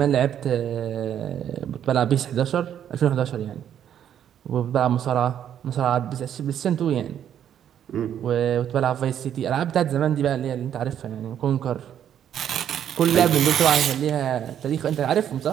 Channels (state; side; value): quieter; left; 9.8 dB